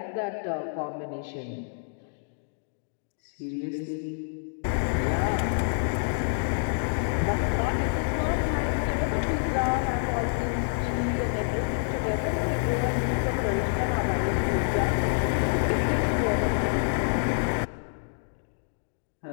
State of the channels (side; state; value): right; silent; digital silence